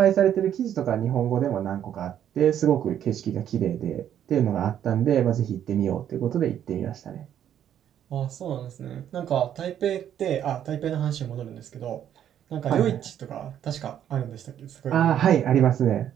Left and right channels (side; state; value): left; quieter; 10.1 dB